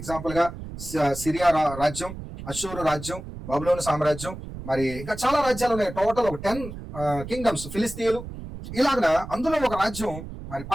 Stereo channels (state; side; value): noise; right; rumble, 11 dB below the sound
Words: ఎగ్జాంపుల్ గా సిరియా రాజ్యం, అషూరు రాజ్యం, బబులోను సామ్రాజ్యం, మరి ఇంకా చాలా రాజ్యాలు ఉన్నాయి. టోటల్ ఒక 10 కింగ్డమ్స్. ఫిలిస్తీన్లు ఇలాగ అందులో ఒక రాజ్యం మరి